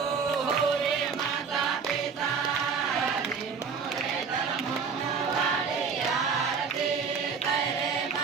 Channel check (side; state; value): left; quieter; 5.8 dB